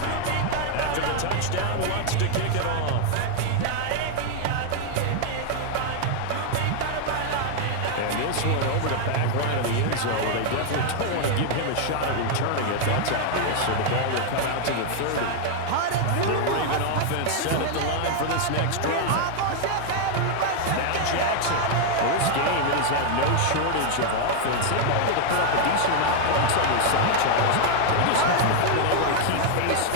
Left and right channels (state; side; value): different; both; correlation 0.00